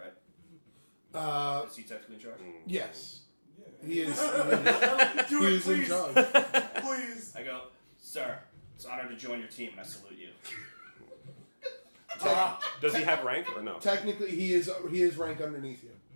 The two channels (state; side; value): inverted; both; correlation -1.00